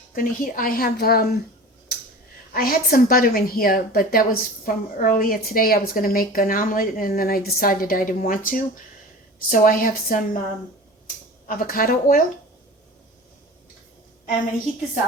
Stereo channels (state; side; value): normal; both; correlation 0.37